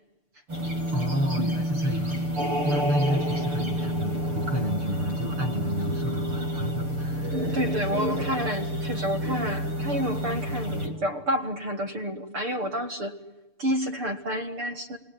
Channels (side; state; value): left; late; 6.8 ms